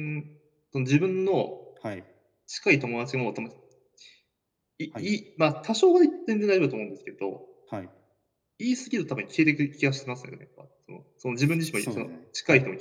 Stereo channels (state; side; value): identical; both; correlation 1.00